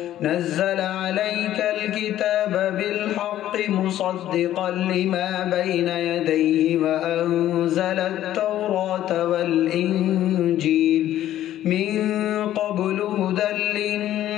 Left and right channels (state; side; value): quieter; right; 12.7 dB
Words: نزل عليك الكتاب بالحق مصدقا لما بين يديه وأنزل التوراة والإنجيل من قبل هدى